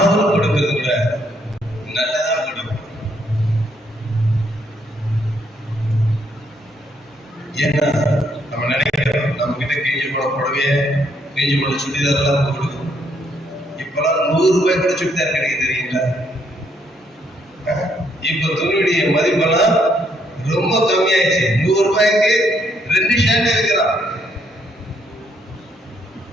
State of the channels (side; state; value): both; normal; correlation 0.72